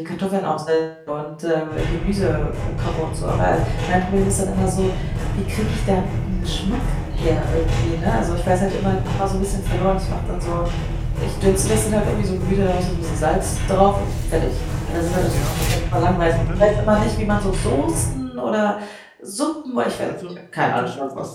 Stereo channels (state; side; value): identical; both; correlation 1.00